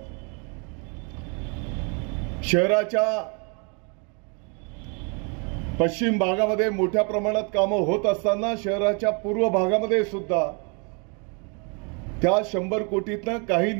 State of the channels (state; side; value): quieter; left; 35.6 dB